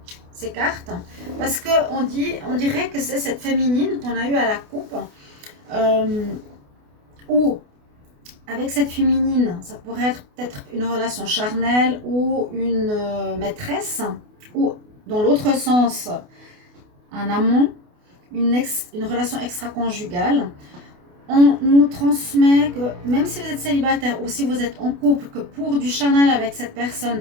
ces cartes. Parce qu'on dirait que c'est cette féminine qu'on a eue à la coupe. Ou avec cette féminine, ça pourrait être peut-être une relation charnelle ou une maîtresse. Ou dans l'autre sens, un amant, une relation extra-conjugale. On nous transmet que même si vous êtes célibataire ou si vous êtes en couple, que pour du charnel avec cette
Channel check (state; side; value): late; left; 28 ms